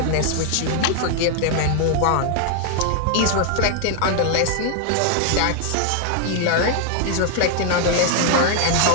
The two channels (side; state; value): both; different; correlation 0.00